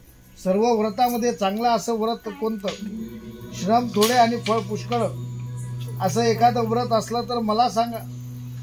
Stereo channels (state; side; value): identical; both; correlation 1.00